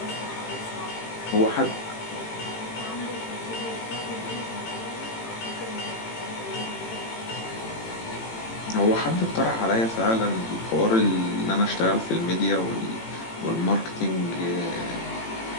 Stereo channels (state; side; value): late; right; 18 ms